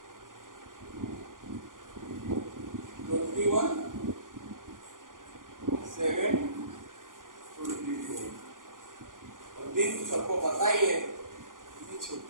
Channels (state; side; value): late; left; 0.89 ms